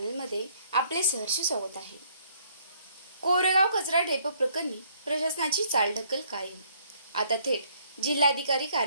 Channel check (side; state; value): both; inverted; correlation -0.65